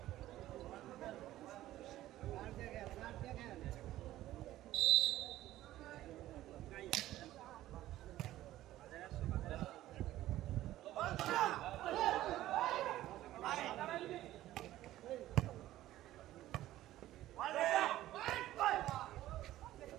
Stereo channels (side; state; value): left; quieter; 14.6 dB